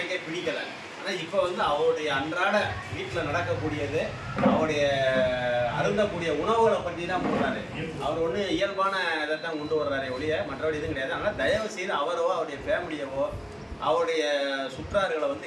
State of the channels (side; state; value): both; identical; correlation 1.00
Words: பிடிக்கலை. ஆனால் இப்போ வந்து அவருடைய அன்றாட வீட்டில் நடக்கக்கூடியது அவருடைய அருந்தக்கூடிய உணவுகளை பற்றி தான் போடுறாரு. அவர் ஒன்று இயல்பான இதை தான் கொண்டு வர்றாரு ஒழிய மற்றபடி இதுவும் கிடையாது. அதனால் தயவு செய்து அவரோ அவருடைய ஃபேமிலியவோ அவருடைய சுற்றார்களை வந்து